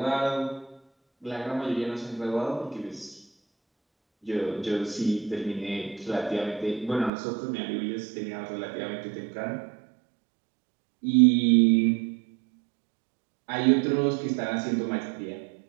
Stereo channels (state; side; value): drops out; left; at 7.1 s